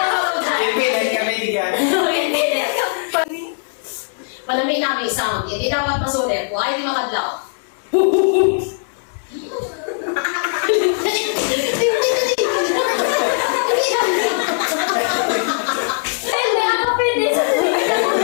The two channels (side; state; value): right; silent; digital silence